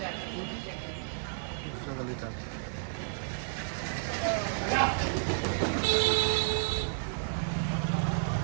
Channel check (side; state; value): left; silent; 57 dB below the other